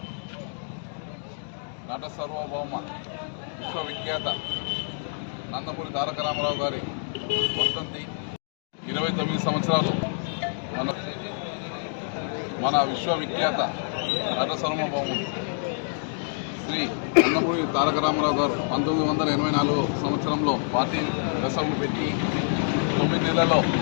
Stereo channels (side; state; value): right; silent; digital silence